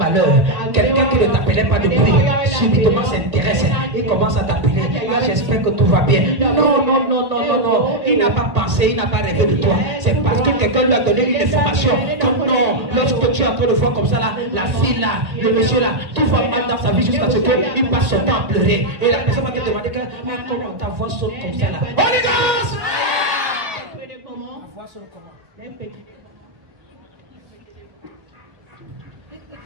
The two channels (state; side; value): late; left; 1.9 ms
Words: quelqu'un qui ne t'appelait pas depuis, subitement s'intéresse, il commence à t'appeler. Ah, j'espère que tout va bien. Non. Il n'a pas pensé, il n'a pas rêvé de toi. C'est parce que quelqu'un lui a donné une information. Que non, lorsque tu es en train de voir comme ça, là, la fille là, le monsieur là, tout va mal dans sa vie jusqu'à ce qu'il passe son temps à pleurer. Et la personne va te demander que, mais comment ta voix saute comme ça là? Holy Ghost! Voir sur le comment. Il